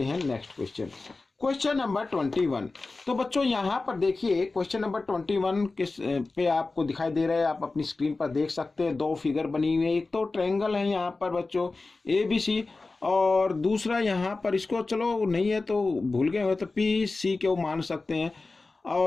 हैं नेक्स्ट क्वेश्चन, क्वेश्चन नंबर 21। तो बच्चों यहाँ पर देखिए क्वेश्चन नंबर 21 किस पे आपको दिखाई दे रहा है, आप अपनी स्क्रीन पर देख सकते हैं। दो फिगर बनी हुई है, एक तो ट्रायंगल है यहाँ पर बच्चों ABC, और दूसरा यहाँ पर इसको चलो नहीं है तो भूल गए हो तो PC क्यों मान सकते हैं।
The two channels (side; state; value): right; quieter; 3.6 dB